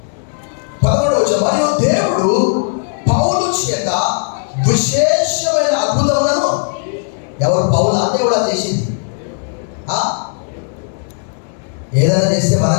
మరియు దేవుడు పౌలు చేత విశేషమైన అద్భుతములను, ఎవరు? పౌలు దేవుడా చేసింది. ఏదైనా చేస్తే మనం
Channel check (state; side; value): silent; right; digital silence